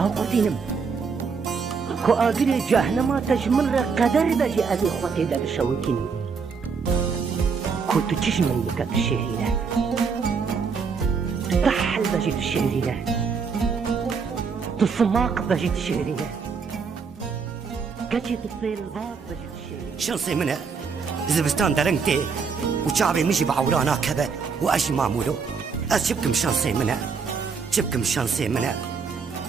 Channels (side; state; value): left; quieter; 5.5 dB